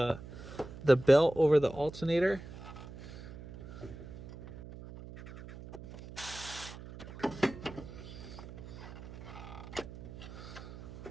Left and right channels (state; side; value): noise; right; hum, 13 dB below the sound